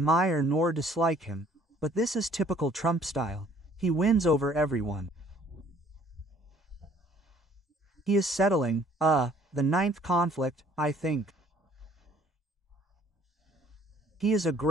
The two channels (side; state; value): both; normal; correlation 0.58